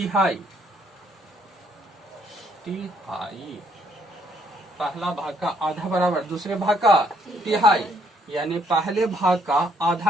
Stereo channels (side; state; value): both; normal; correlation 0.69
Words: पहला भाग का आधा बराबर दूसरे भाग का तिहाई, यानी पहले भाग का